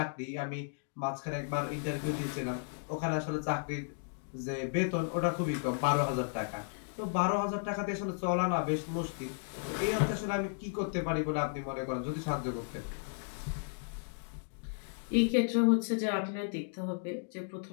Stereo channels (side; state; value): right; silent; digital silence